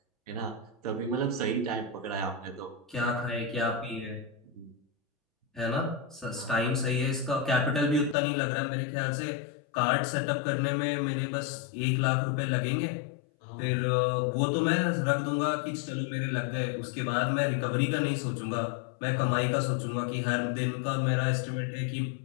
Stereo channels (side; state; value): right; drops out; at 8.2 s